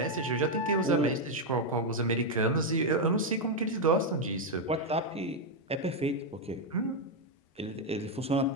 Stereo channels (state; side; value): normal; both; correlation 0.03